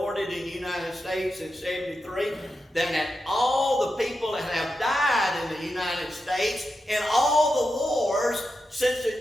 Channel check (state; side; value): normal; both; correlation 0.89